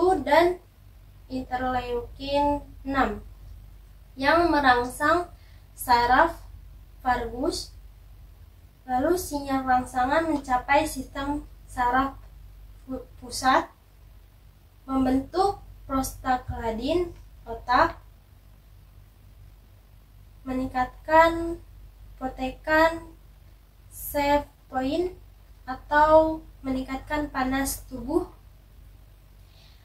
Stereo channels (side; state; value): both; identical; correlation 1.00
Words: dan interleukin 6 yang merangsang saraf vagus. Lalu sinyal rangsangan mencapai sistem saraf pusat, membentuk prostaglandin otak, meningkatkan protekan sevpoin atau meningkatkan panas tubuh.